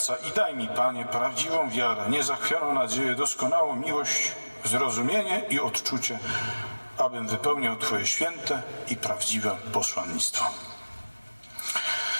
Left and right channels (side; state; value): both; inverted; correlation -1.00